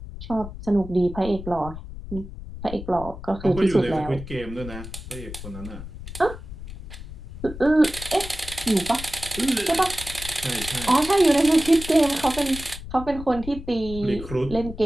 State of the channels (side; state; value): left; noise; rumble, 12 dB below the sound